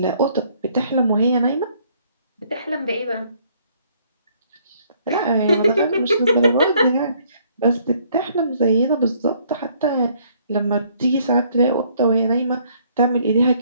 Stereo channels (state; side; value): inverted; both; correlation -0.64